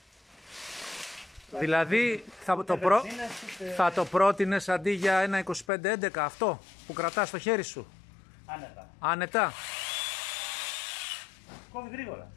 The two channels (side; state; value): right; drops out; at 5.7 s